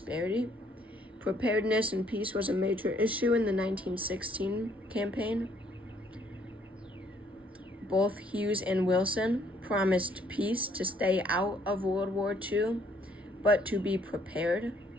Preparedness and peace was a major issue in the 1916 campaign. Both Hughes and Wilson promised peace, to stay out of World War II, but to be prepared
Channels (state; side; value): normal; both; correlation 0.66